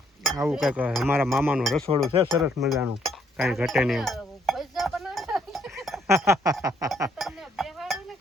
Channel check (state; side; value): normal; both; correlation 0.70